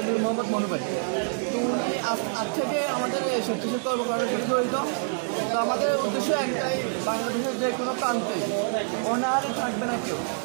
মোহাম্মদ মনু ভাই। তো উনি আজ থেকে আমাদের স্বেচ্ছাসেবী কর্মকাণ্ডের সাথে জড়িত। তো আমাদের উদ্দেশ্য একটাই, বাংলাদেশের যে কোনো প্রান্তে অনাহারে থাকবে না কেউ,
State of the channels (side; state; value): left; silent; 61 dB below the other